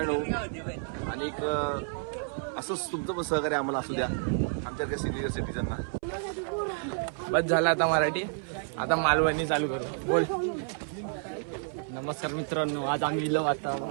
होऊ. आणि एक असंच तुमचं पण सहकार्य आम्हाला असू द्या आमच्या सिनियर सिटीजनना. बस झालं आता मराठी. आता मालवणी चालू करू. बोल. नमस्कार मित्रांनो, आज आम्ही इलो आता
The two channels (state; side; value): silent; left; 58 dB below the other